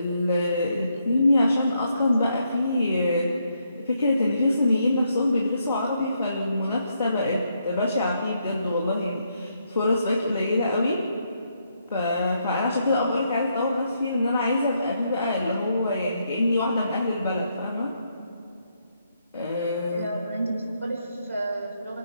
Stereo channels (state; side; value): inverted; both; correlation -0.77